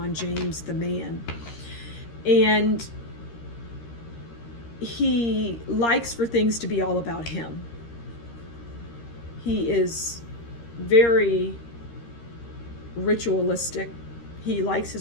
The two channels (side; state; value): right; late; 13 ms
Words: James, the man. And he likes for things to be all about him. He is very ritualistic. He likes